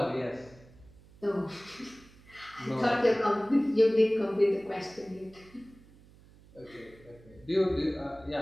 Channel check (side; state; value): right; noise; hum, 25 dB below the sound